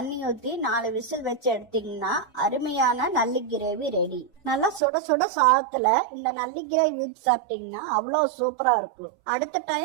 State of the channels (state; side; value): drops out; left; at 4.8 s